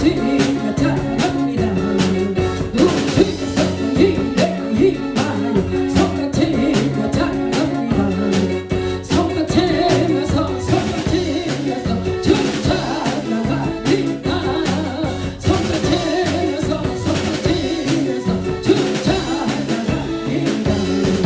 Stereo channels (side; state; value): both; identical; correlation 1.00